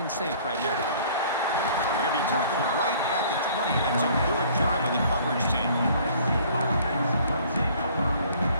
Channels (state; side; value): inverted; both; correlation -0.54